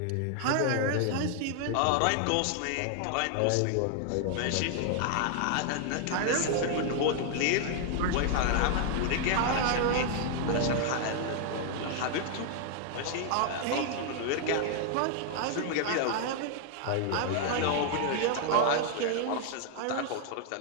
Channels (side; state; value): both; different; correlation 0.00